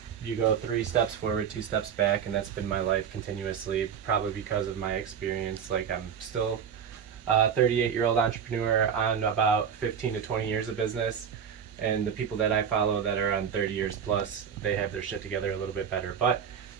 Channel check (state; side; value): quieter; left; 7.7 dB